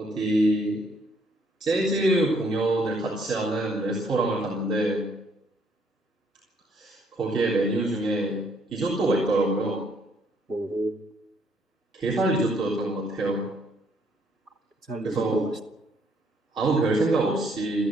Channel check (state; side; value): normal; both; correlation 0.68